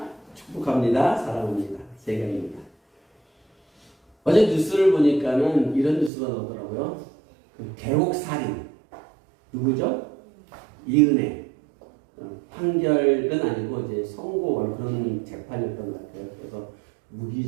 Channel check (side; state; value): left; drops out; at 6.1 s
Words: 축복합니다. 사랑합니다. 세 개입니다. 어제 뉴스를 보니까는 이런 뉴스가 나오더라고요. 계곡살인 누구죠? 이은혜. 판결은 아니고 이제 선고 그런 재판이었던 것 같아요. 그래서